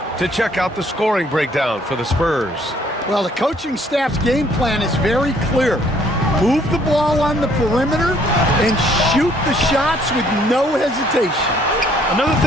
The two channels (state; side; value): normal; both; correlation 0.63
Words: to check out the scoring breakdown for the Spurs. Well, the coaching staff's game plan is very clear. Move the ball on the perimeter and shoot the shots with no hesitation. Another